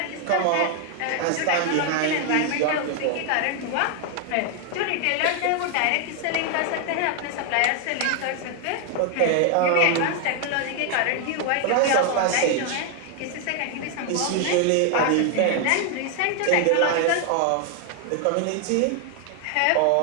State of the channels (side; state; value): both; different; correlation 0.00